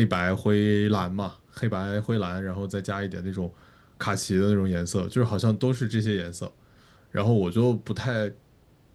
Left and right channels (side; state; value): both; identical; correlation 1.00